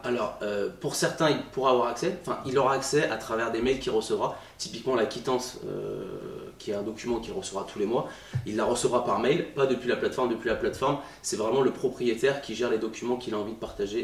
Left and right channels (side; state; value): both; identical; correlation 1.00